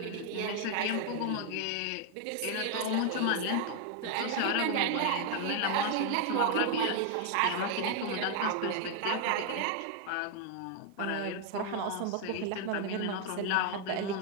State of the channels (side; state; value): both; different; correlation 0.00